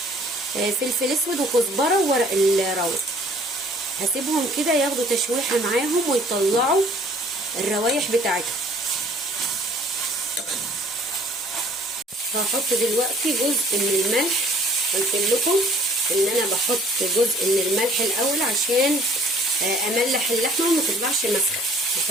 فلفل اسود وكزبره وورق الراوس. هسيبهم كده ياخدوا تشويحه معاهم ويطلعوا الروايح بتاعتهم. هحط دلوقتي جزء من الملح. قلت لكم ان انا بحط جزء من الملح الاول عشان املح اللحمه وما تطلعش مسخه.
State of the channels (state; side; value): normal; both; correlation 0.56